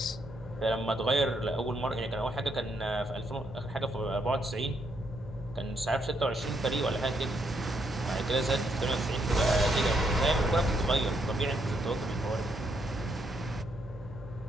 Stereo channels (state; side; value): normal; both; correlation 0.75